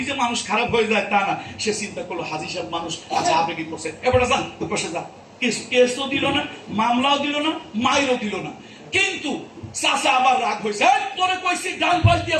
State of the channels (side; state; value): both; identical; correlation 1.00